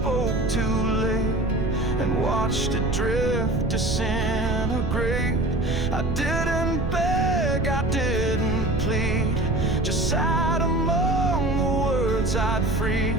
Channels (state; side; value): noise; right; rumble, 2 dB below the sound